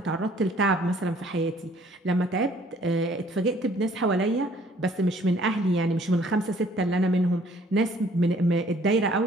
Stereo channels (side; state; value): both; normal; correlation 0.59